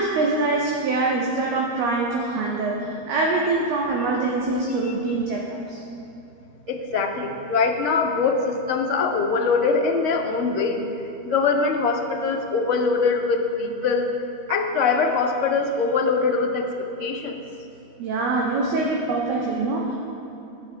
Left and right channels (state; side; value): late; left; 13 ms